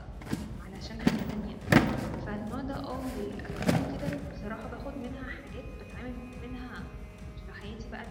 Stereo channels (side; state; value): both; identical; correlation 1.00